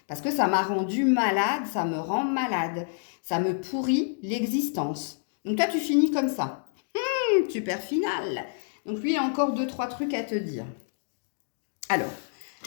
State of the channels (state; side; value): silent; right; digital silence